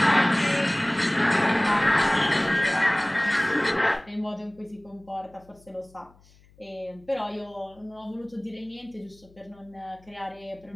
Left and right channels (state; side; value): noise; left; hum, 28 dB below the sound